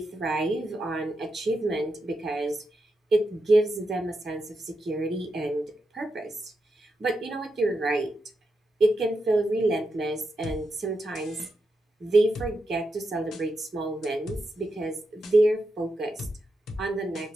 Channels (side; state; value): both; normal; correlation 0.86